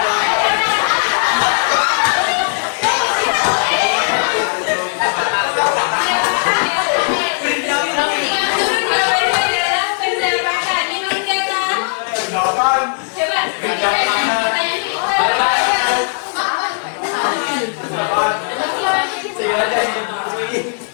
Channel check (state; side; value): silent; right; 68 dB below the other